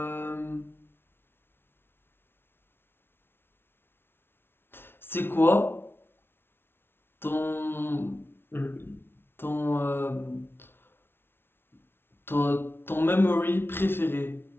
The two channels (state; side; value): late; right; 0.11 ms